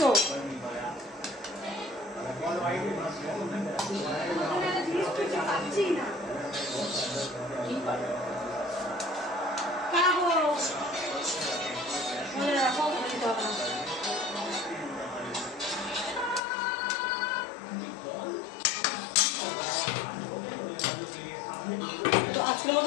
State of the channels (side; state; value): right; drops out; at 16.4 s